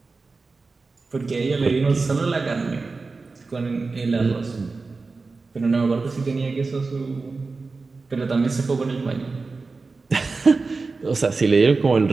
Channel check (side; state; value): left; quieter; 4.0 dB